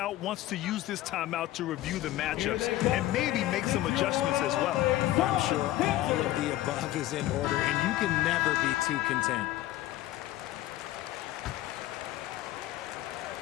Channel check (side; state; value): right; quieter; 15.0 dB